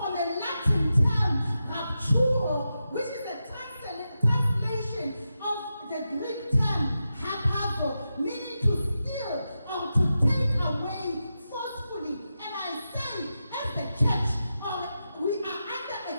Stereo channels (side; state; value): both; inverted; correlation -0.90